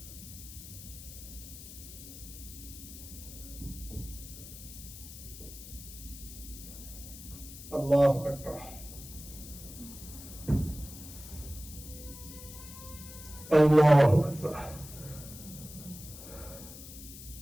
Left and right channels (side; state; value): left; noise; hiss, 14 dB below the sound